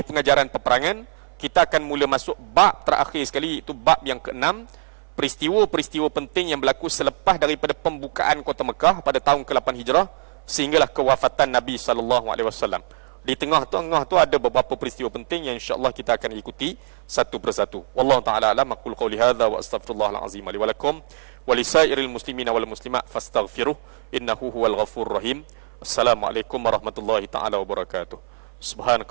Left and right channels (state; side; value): silent; left; 58 dB below the other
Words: pengajaran peperangan, kita akan mula masuk bab terakhir sekali, iaitu bab yang ke-6, peristiwa-peristiwa penting yang berlaku selepas daripada pembukaan kota Mekah pada tahun ke-8 Hijrah sehinggalah kewafatan Nabi SAW. Di tengah-tengah tu ada beberapa peristiwa penting yang insya-Allah kita akan ikuti satu persatu. Wallahu taala alam. Aqul qouli hadza wa astaghfirullahal azim li wa lakum wa lisairil muslimina wal muslimat fastaghfiruh innahu huwal ghafurur rahim. Assalamualaikum warahmatullahi taala wabarakatuh.